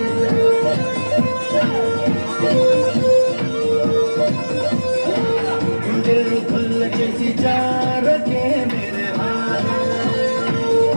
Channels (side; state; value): both; inverted; correlation -1.00